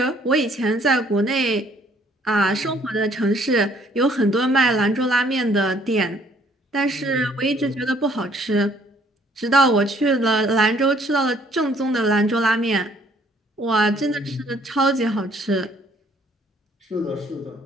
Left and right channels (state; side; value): normal; both; correlation 0.62